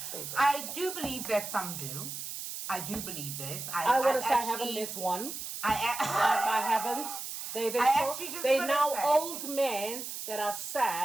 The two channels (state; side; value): noise; right; hiss, 7 dB below the sound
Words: I do believe that some do. I do believe this. I want to say I haven't met one. I haven't. They're now old men that are